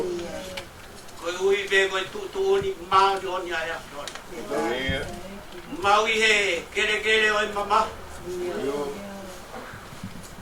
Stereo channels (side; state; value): both; identical; correlation 1.00